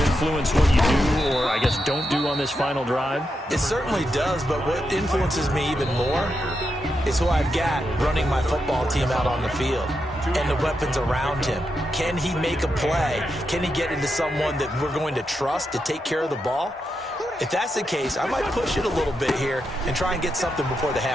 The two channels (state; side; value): normal; both; correlation 0.85